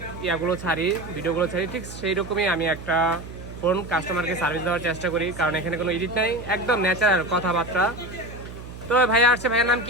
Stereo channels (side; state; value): right; noise; hum, 13 dB below the sound